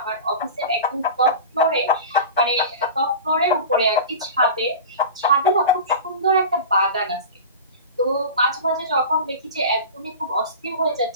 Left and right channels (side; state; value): both; inverted; correlation -0.32